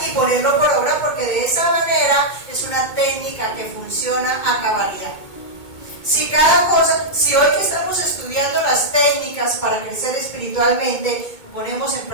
y ponerlo por obra, porque de esa manera es una técnica que funciona a cabalidad. Si hoy que estamos estudiando las técnicas para crecer espiritualmente, ponemos en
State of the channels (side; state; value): right; late; 2.2 ms